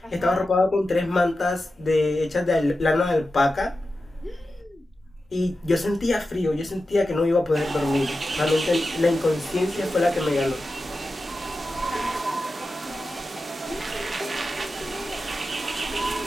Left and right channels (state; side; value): normal; both; correlation 0.92